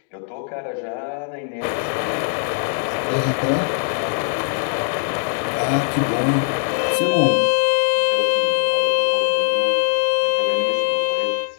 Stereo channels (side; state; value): right; silent; digital silence